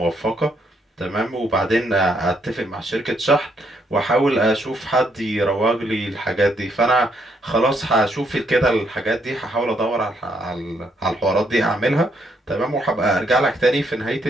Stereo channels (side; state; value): both; normal; correlation 0.73